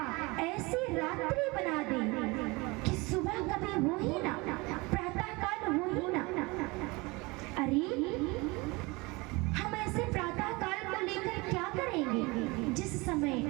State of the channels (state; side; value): quieter; left; 24.7 dB